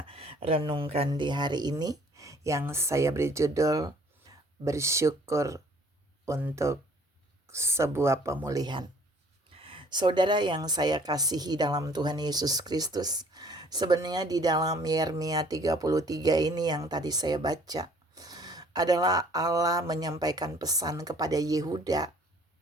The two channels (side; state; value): both; normal; correlation 0.56